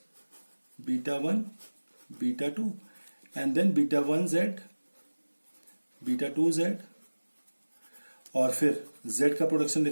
beta 1 beta 2, and then beta 1 Z beta 2 Z, और फिर Z का प्रोडक्शन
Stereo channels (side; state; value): both; inverted; correlation -1.00